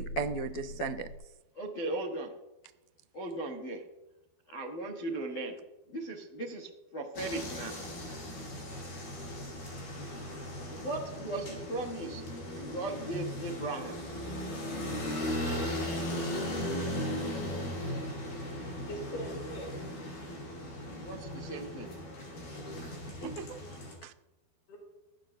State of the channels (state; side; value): late; right; 12 ms